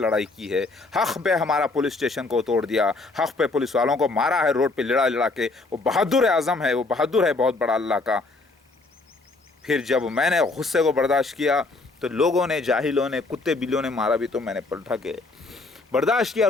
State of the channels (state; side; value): quieter; right; 3.4 dB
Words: کی ہے, حق پہ ہمارا پولیس اسٹیشن کو توڑ دیا, حق پہ پولیس والوں کو مارا ہے روڈ پہ لڑا لڑا کے. وہ بہادر اعظم ہے, وہ بہادر ہے بہت بڑا اللہ کا. پھر جب میں نے غصے کو برداشت کیا تو لوگوں نے, جاہلوں نے, کتے بلیوں نے مارا بھی تو میں نے پلٹا کے برداشت کیا,